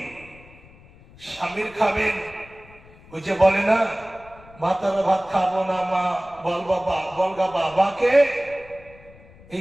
স্বামীর খাবেন, ওই যে বলে না, ভাতার ভাত খাবো না মা, বল বাবা, বলগা বাবাকে। এই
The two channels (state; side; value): noise; left; rumble, 23 dB below the sound